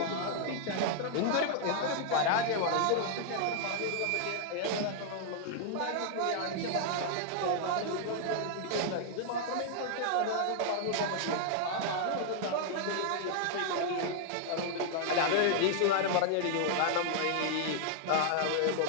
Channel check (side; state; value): both; different; correlation -0.01